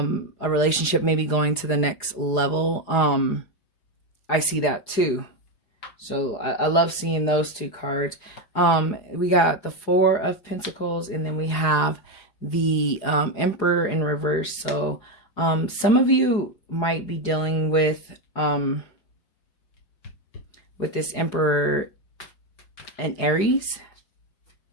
relationship maybe going to the next level. I see that too. So I love seeing those two cards. We got the Four of Pentacles, and then we have the Emperor in reverse. So some of you might be dealing with this Emperor and Aries.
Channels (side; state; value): right; late; 4.9 ms